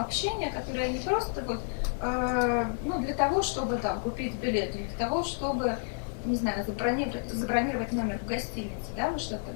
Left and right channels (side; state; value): right; silent; digital silence